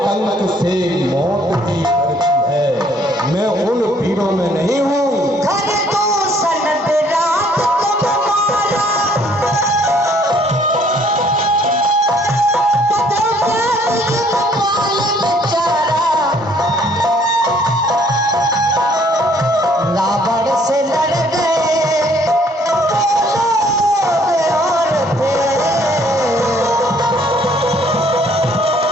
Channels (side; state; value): both; normal; correlation 0.62